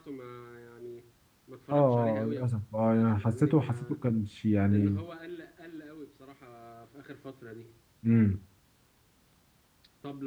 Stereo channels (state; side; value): identical; both; correlation 1.00